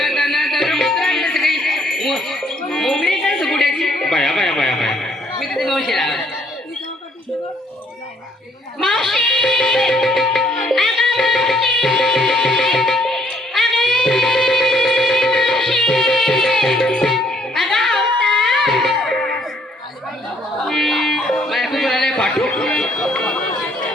मोगरी काय सुकुट्याची बाया बाया बाया बाया मी तिथे मावशी राहायचं मावशी पाठू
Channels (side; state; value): both; normal; correlation 0.65